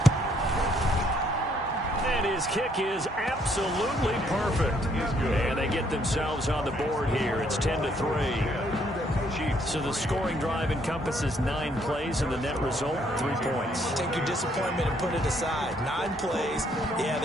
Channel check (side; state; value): both; normal; correlation 0.68